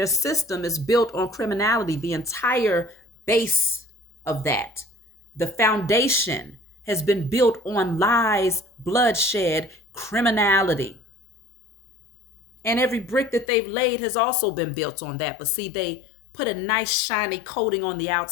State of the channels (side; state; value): right; drops out; at 13.5 s